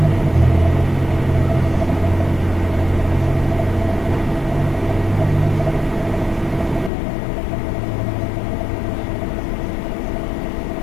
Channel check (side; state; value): right; drops out; at 6.9 s